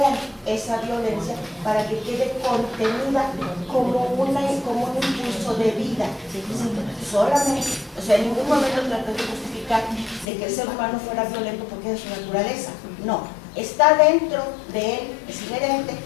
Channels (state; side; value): drops out; right; at 10.2 s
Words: esa violencia para que quede contenida como un impulso de vida. ¿Sí? Solamente, o sea, en ningún momento traté de justificar de que el ser humano fuera violento porque es su naturaleza. No, está dentro de él, es inherente,